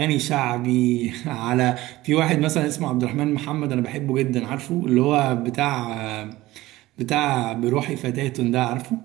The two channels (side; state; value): left; quieter; 17.7 dB